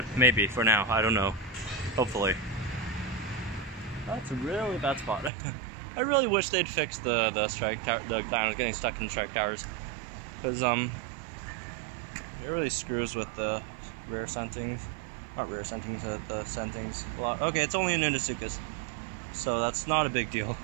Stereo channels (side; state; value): left; drops out; at 5.3 s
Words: Maybe, for now. I don't know. Hopefully. That's a really bad spot. I really wish they'd fix the strike tower, the dinos getting stuck in strike towers. Because, it really screws with the rear sentings. Not rear sentings, the sentings a lot. Okay, it's only a Nunosuchus. So that's not a big deal.